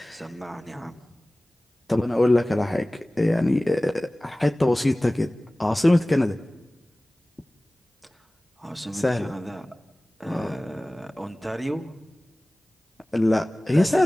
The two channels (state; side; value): normal; both; correlation 0.98